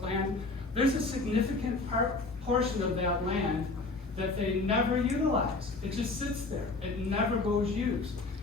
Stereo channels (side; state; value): right; quieter; 3.5 dB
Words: land, there's a significant portion of that land that they never utilize. It just sits there. It never goes used.